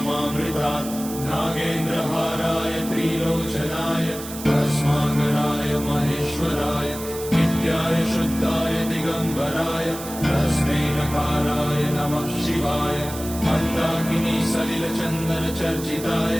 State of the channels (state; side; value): noise; right; hiss, 12 dB below the sound